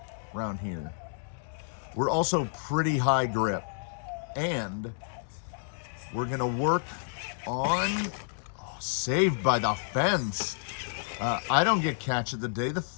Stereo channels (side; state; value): right; silent; digital silence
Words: around here. We're also pretty high grip, and we're gonna work on, saved by the fence. I don't get catch of the day, the